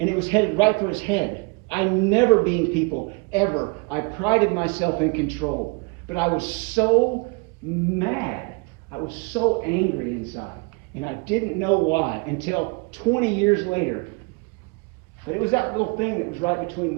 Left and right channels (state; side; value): quieter; left; 30.4 dB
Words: it was headed right for his head. I never beamed people, ever. I prided myself in control. But I was so mad. I was so angry inside, and I didn't know why until 20 years later. But it was that little thing that was right between